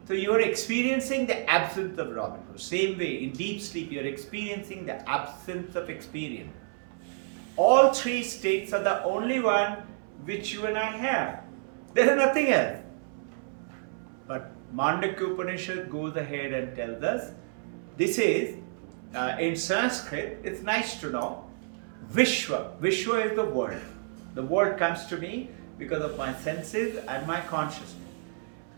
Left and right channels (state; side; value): silent; left; 58 dB below the other